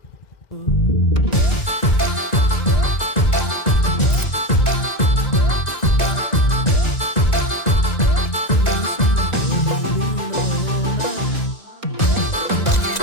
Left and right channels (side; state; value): right; late; 2.0 ms